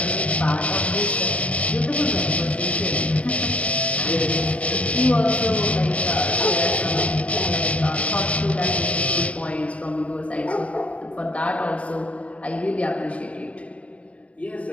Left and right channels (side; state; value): right; late; 0.065 ms